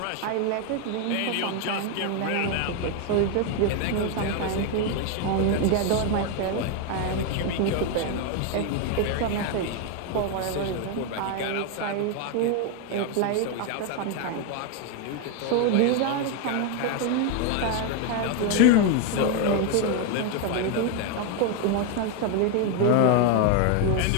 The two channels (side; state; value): both; different; correlation 0.01